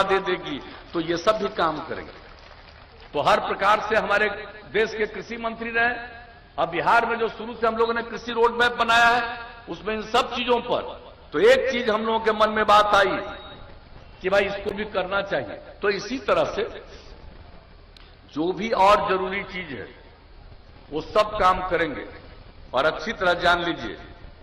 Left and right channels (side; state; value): both; identical; correlation 1.00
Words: दे देगी। तो ये सब भी काम करेंगे। तो हर प्रकार से हमारे देश के कृषि मंत्री रहे, अब बिहार में जो शुरू से हम लोगों ने कृषि रोड मैप बनाया है उसमें इन सब चीजों पर, तो एक चीज हम लोगों के मन में बात आई कि भाई इसको भी करना चाहिए। तो इसी तरह से जो भी और जरूरी चीज है वो सब काम करेंगे। और अच्छी तरह जान लीजिए,